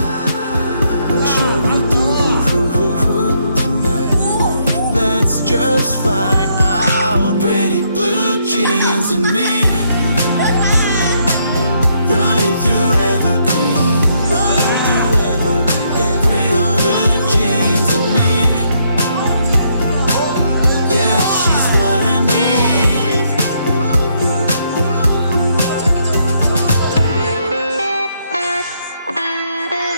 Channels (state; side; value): inverted; both; correlation -0.73